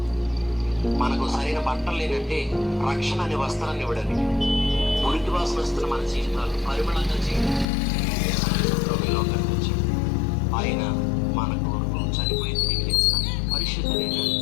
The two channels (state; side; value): drops out; right; at 7.7 s